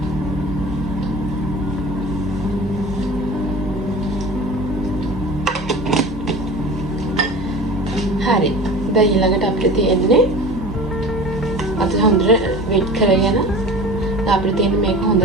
හරි. දැන් ඊළඟට අපිට තියෙන්නේ අත හොඳට වෙට් කරගෙන අපිට තියෙන මේක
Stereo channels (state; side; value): normal; both; correlation 0.37